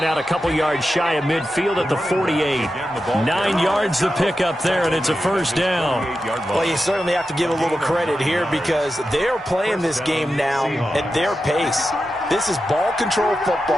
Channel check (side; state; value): both; normal; correlation 0.90